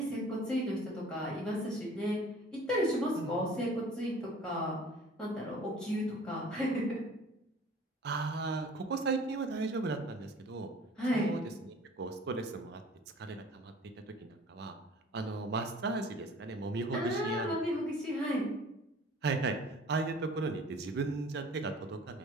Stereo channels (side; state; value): both; normal; correlation 0.48